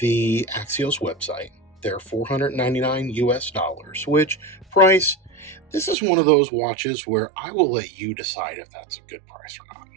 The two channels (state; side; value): drops out; left; at 6.0 s